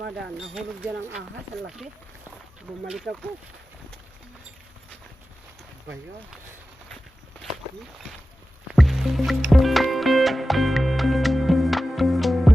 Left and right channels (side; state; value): both; normal; correlation 0.94